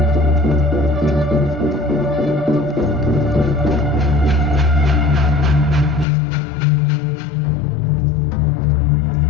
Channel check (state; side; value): drops out; right; at 6.1 s